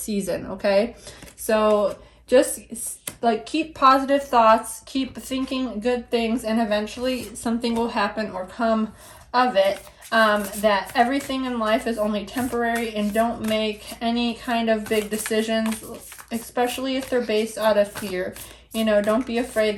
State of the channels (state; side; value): identical; both; correlation 1.00